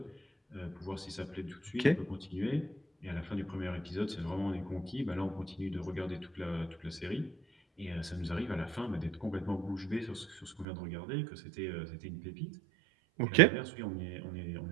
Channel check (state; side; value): drops out; left; at 10.7 s